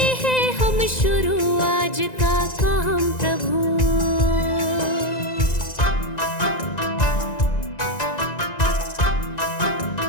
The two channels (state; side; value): late; right; 1.9 ms